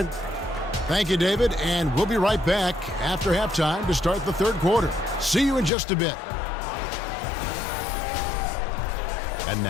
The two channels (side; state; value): right; drops out; at 5.7 s